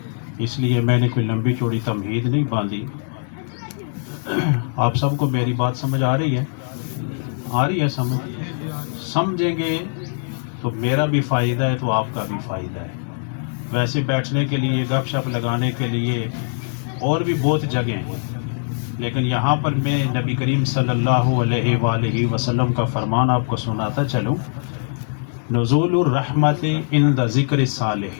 اس لیے میں نے کوئی لمبی چوڑی تمہید نہیں باندھی۔ آپ سب کو میری بات سمجھ آ رہی ہے سمجھیں گے تو میرا بھی فائدہ ہے تو آپ کا بھی فائدہ ہے۔ ویسے بیٹھنے کے لیے، گپ شپ لگانے کے لیے اور بھی بہت جگہیں ہیں، لیکن یہاں پر میں نبی کریم صلی اللہ علیہ وآلہ وسلم کا فرمان آپ کو سناتا چلوں۔ نزول الرحمت عند ذکر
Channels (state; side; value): silent; right; 65 dB below the other